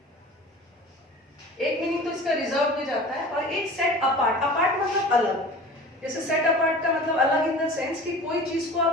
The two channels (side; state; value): both; normal; correlation 0.39